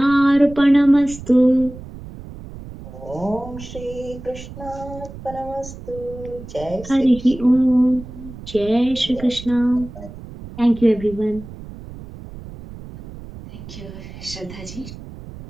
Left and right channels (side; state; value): right; noise; rumble, 14 dB below the sound